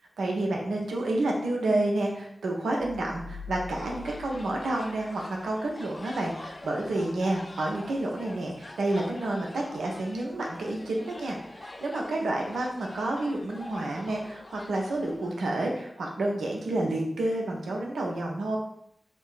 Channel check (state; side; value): normal; both; correlation 0.92